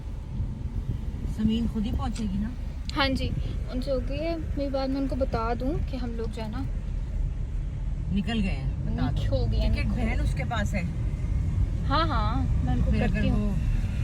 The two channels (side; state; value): both; identical; correlation 1.00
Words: समीन खुद ही पहुंचेगी ना। हाँ जी, उनसे हो गई है मेरी बात। मैं उनको बता दूं कि हम लोग जो है ना निकल गए हैं, बता दो। हो गया। टिकट बहन उसके पास है। हाँ हाँ, मैं उनको फिर अगर करती हूँ,